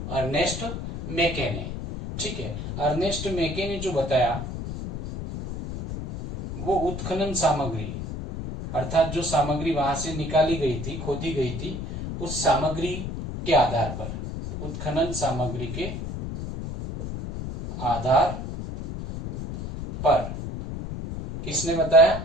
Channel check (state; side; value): noise; left; rumble, 6 dB below the sound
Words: अर्नेस्ट मैके ने। ठीक है, अर्नेस्ट मैके ने जो बताया वो उत्खनन सामग्री, अर्थात जो सामग्री वहां से निकाली गई थी, खोदी गई थी, उस सामग्री के आधार पर, उत्खनन सामग्री के आधार पर किसने बताया?